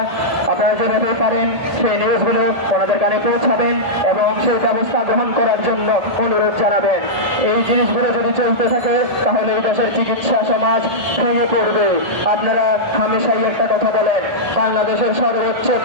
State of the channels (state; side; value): late; left; 1.8 ms